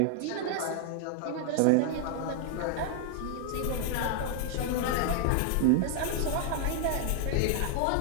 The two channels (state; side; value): different; both; correlation 0.00